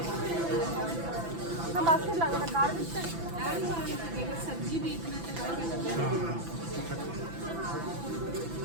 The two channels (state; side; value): late; left; 5.9 ms